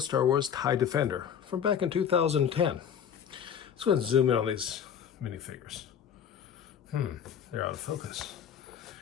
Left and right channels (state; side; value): quieter; right; 8.4 dB